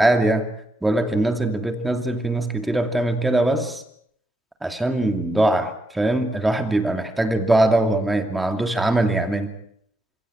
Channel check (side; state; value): both; normal; correlation 0.82